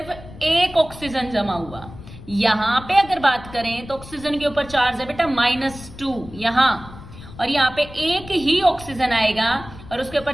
एक ऑक्सीजन जमा हुआ। यहाँ पे अगर बात करें तो ऑक्सीजन के ऊपर चार्ज है बेटा -2 यहाँ, और यहाँ पे एक ही ऑक्सीजन आएगा और उसके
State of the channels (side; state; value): left; noise; rumble, 16 dB below the sound